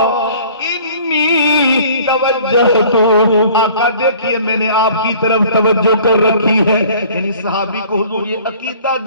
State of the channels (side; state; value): both; inverted; correlation -0.51